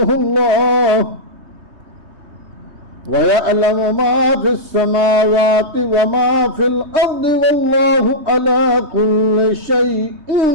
الله ويعلم ما في السماوات وما في الأرض والله على كل شيء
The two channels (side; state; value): left; late; 3.2 ms